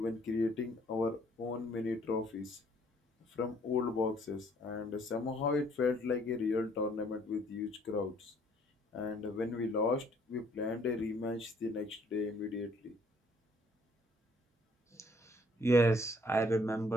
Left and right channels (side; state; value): both; normal; correlation 0.62